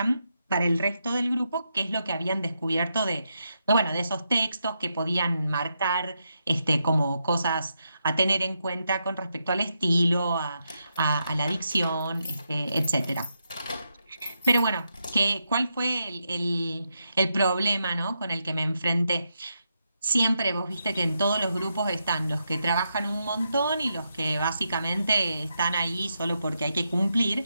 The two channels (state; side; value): inverted; both; correlation -0.83